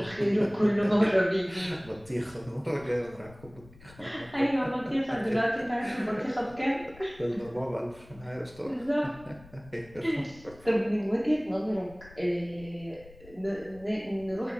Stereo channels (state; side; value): noise; left; rumble, 22 dB below the sound